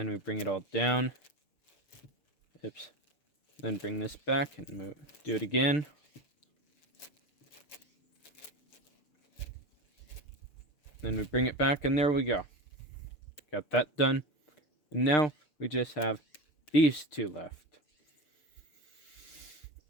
we bring it all down. Oops. Then bring this back and do it again. Then we bring it back, and there we go. Got that done. And now we just have these two left.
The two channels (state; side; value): late; right; 6.6 ms